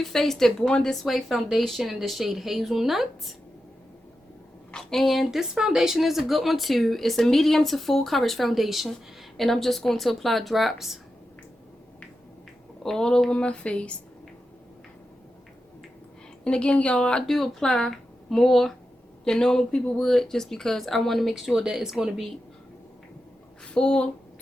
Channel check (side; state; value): both; normal; correlation 0.90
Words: Faced Born This Way foundation in the shade Hazelnut. And this foundation is a good one too. It's a medium to full coverage foundation. And I'm just going to apply drops all over my face. And again, y'all, I do apply more than normal people would, just because I want to make sure that it's going to be full